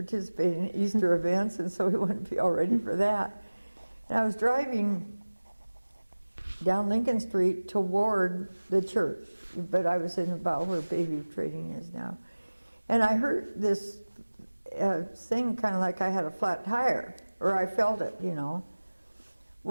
in Easter events, and so we wanted to be all ready for that. And I was driving down Lincoln Street toward the church, but I was in about where Bayview Trading is now. And I heard this thing kind of like I had a flat tire, or I felt it,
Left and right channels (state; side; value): inverted; both; correlation -1.00